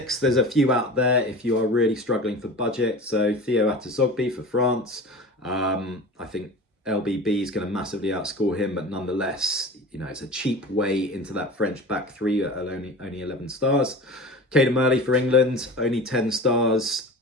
there's a few out there if you are really struggling for budget. So Theo Atazogbi for France. I think LBB is going to massively outscore him, but nonetheless, it's a cheap way into that French back 3 at only 11 stars. Caden Murley for England, only 10 stars.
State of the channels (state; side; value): normal; both; correlation 0.35